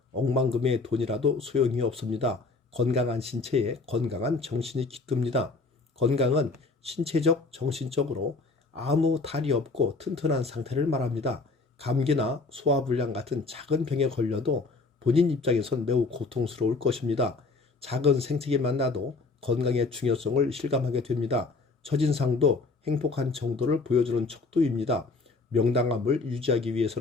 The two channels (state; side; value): quieter; right; 3.8 dB